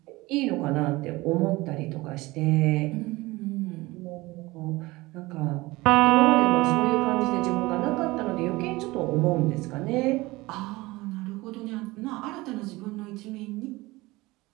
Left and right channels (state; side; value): quieter; left; 20.8 dB